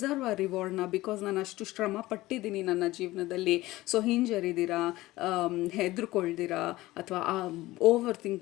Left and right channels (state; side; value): quieter; right; 18.0 dB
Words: ಆ ರಿವಾರ್ಡ್ನ, ಬಿಕಾಸ್ ನಾನು ಅಷ್ಟು ಶ್ರಮ ಪಟ್ಟಿದ್ದೀನಿ ನನ್ನ ಜೀವನದಲ್ಲಿ. ಸೊ ಹಿಂಜರಿದಿರಾ, ಹೆದರ್ಕೊಳ್ದಿರಾ, ಅಥವಾ ಓವರ್